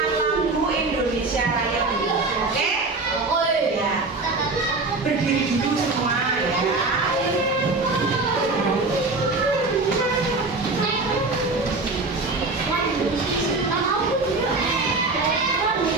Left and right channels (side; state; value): left; quieter; 3.5 dB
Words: lagu Indonesia Raya dulu, oke? Ya. Berdiri dulu semua ya.